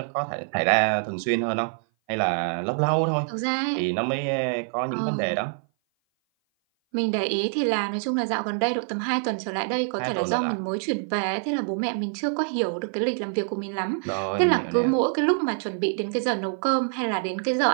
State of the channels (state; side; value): silent; left; 57 dB below the other